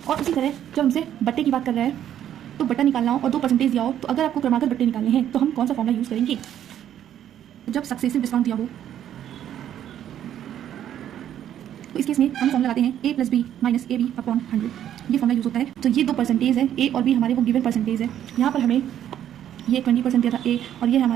और उसी तरह जब हमसे बट्टे की बात कर रहा है तो बट्टा निकालना हो और 2% दिया हो तो अगर आपको क्रमागत बट्टे निकालने हैं तो हम कौन सा फॉर्मूला यूज़ करेंगे। जब सक्सेसिव डिस्काउंट दिया हो तो इस केस में हम फॉर्मूला लगाते हैं a + b - ab अपॉन 100। ये फॉर्मूला यूज़ होता है। तो ये 2% है, a और b हमारे वो गिवन परसेंटेज है। यहाँ पर हमें ये 20% दिया था a और ये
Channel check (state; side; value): quieter; left; 10.7 dB